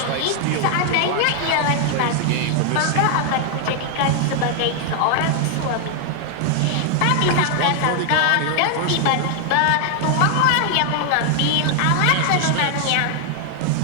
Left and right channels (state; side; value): different; both; correlation 0.00